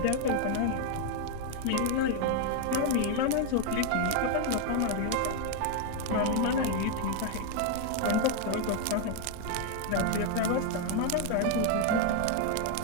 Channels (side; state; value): both; different; correlation 0.01